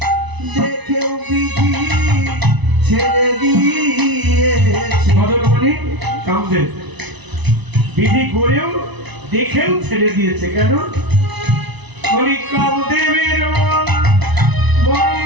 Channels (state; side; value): late; left; 1.0 ms